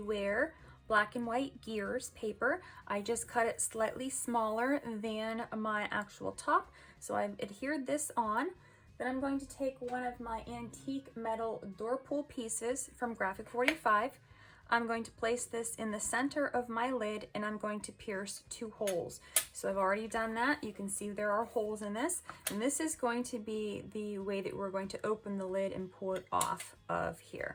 black and white gears paper. I just cut it slightly smaller than my actual top, so I've adhered this on. Then I'm going to take one of my antique metal door pull pieces from Graphic 45. I'm going to place this in the center of my lid and I'm going to pierce 2 holes. So I've already done that. You can see there are holes in this, and this is going to be the way that we're going to open the lid and pull it off of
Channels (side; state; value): both; identical; correlation 1.00